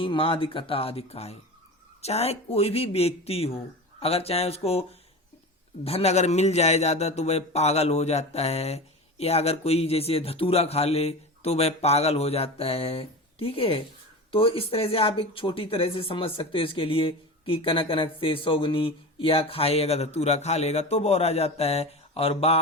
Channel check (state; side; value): normal; both; correlation 0.29